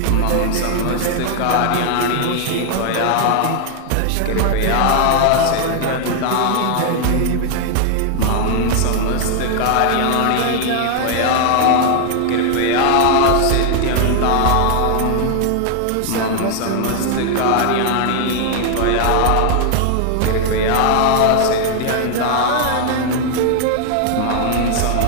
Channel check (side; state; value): both; different; correlation 0.00